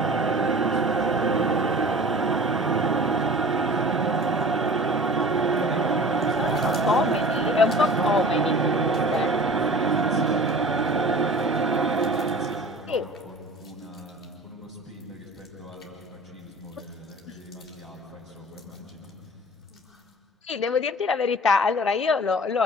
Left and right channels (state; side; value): normal; both; correlation 0.42